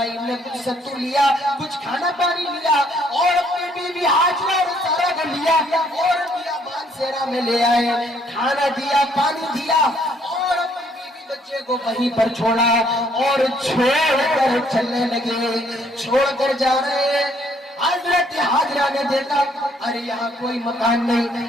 نے کچھ ستو لیا، کچھ کھانا پانی لیا اور اپنی بیوی حاجرہ اور سارا کو لیا اور بیابان صحرا میں لے آئے، کھانا دیا، پانی دیا اور اپنی بیوی بچے کو وہیں پر چھوڑا اور چھوڑ کر چلنے لگے، چھوڑ کر جا رہے ہیں۔ حضرت حاجرہ نے دیکھا ارے یہاں کوئی مکان نہیں،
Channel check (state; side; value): normal; both; correlation 0.66